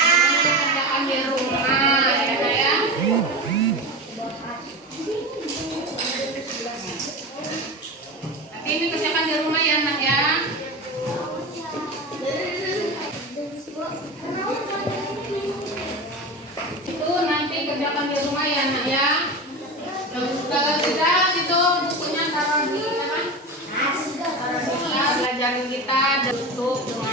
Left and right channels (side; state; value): both; normal; correlation 0.25